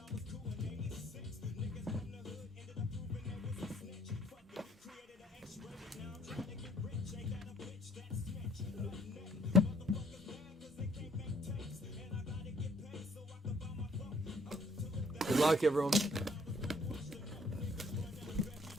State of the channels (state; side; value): normal; both; correlation 0.62